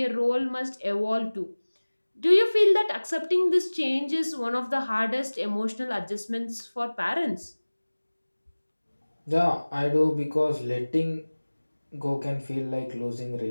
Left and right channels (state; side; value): inverted; both; correlation -1.00